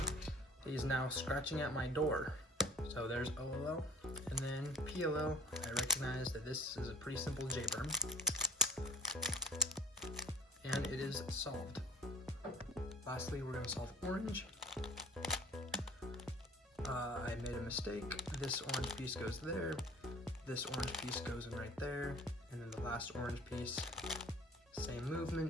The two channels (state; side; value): normal; both; correlation 0.47